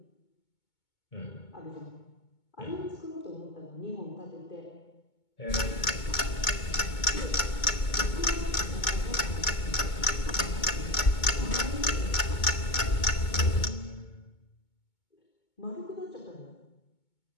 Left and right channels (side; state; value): right; late; 2.2 ms